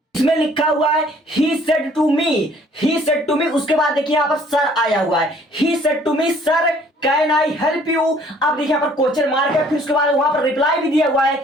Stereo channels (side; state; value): both; normal; correlation 0.58